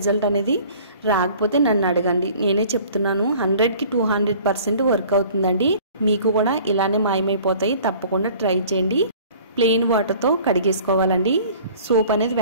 అనేది రాకపోతే నన్ను అడగండి. నేనే చెప్తున్నాను. 100కి 200% వర్క్ అవుతుందండి. మీకు కూడా ఇలానే మాయమైపోతాయి. తప్పకుండా ట్రై చేయండి. ప్లెయిన్ వాటర్తో కడిగేసుకోవాలండి. సోప్ అనేది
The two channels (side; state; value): both; inverted; correlation -0.50